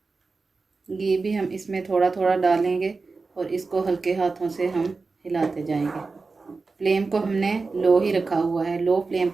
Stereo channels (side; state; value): left; quieter; 4.1 dB